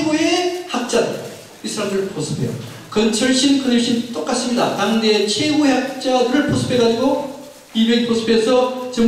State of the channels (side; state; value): both; identical; correlation 1.00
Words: 학자들, 이 사람들을 포섭해요. 건설신 똑같습니다. 당대의 최고의 학자들을 포섭해가지고 200이 포섭해서